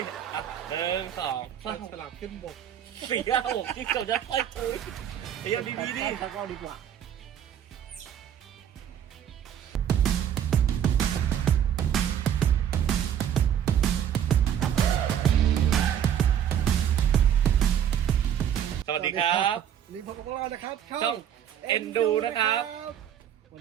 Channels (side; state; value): left; quieter; 9.5 dB